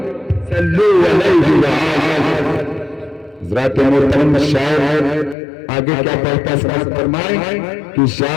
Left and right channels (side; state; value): right; drops out; at 5.4 s